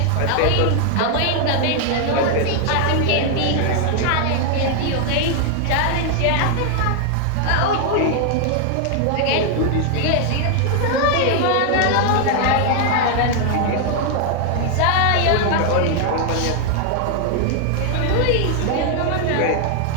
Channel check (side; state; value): both; different; correlation 0.00